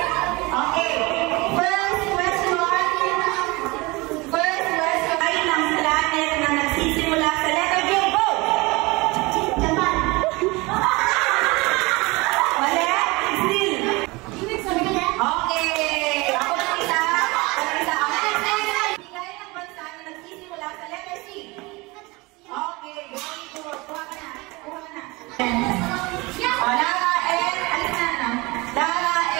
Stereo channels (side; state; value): left; quieter; 24.0 dB